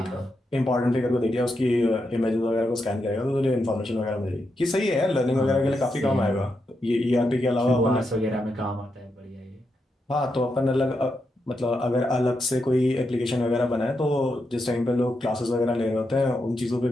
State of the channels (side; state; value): both; normal; correlation 0.84